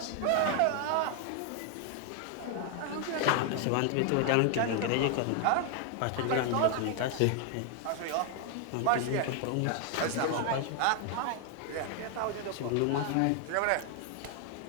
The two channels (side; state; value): both; different; correlation 0.00